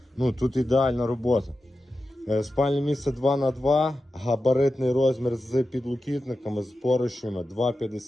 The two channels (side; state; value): both; normal; correlation 0.92